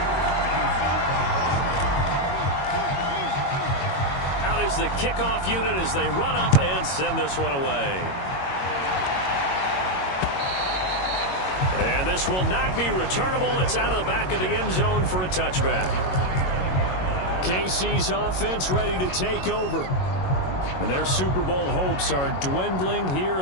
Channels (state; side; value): late; right; 22 ms